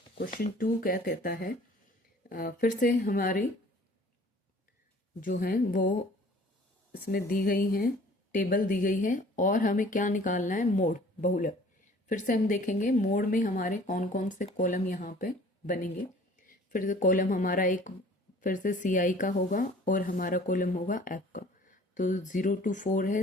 क्वेश्चन 2 क्या कहता है, फिर से हमारी जो है वो इसमें दी गई हैं, टेबल दी गई है, और हमें क्या निकालना है, मोड बहुलक। फिर से हम देखेंगे मोड में हमारे कौन कौन से कॉलम यहाँ पे बनेंगे। फिर से कॉलम हमारा एक फिर से सी आई का होगा और हमारा कॉलम होगा एफ का। तो 0 to 4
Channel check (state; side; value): normal; both; correlation 0.51